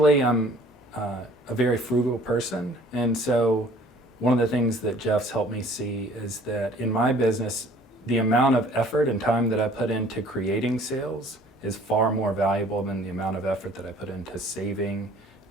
I'm a very frugal person, and so one of the things that Jeff's helped me see is that in my business, the amount of effort and time that I put into creating sales is far more valuable than the amount of effort that I put into saving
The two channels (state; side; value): normal; both; correlation 0.53